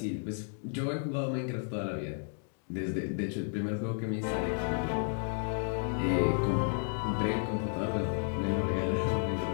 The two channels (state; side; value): silent; right; 56 dB below the other